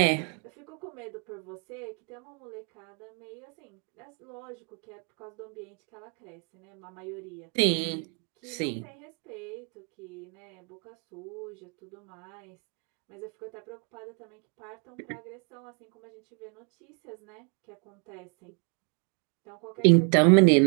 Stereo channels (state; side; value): quieter; left; 35.9 dB